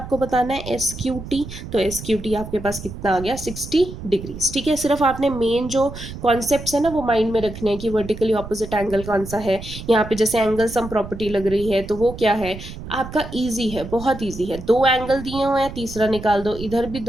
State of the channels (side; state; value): right; noise; rumble, 11 dB below the sound